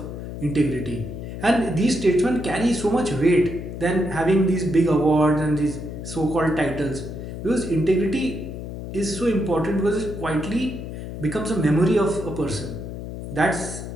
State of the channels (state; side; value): noise; left; hum, 8 dB below the sound